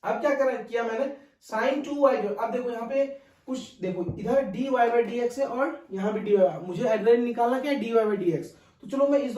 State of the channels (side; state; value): both; identical; correlation 1.00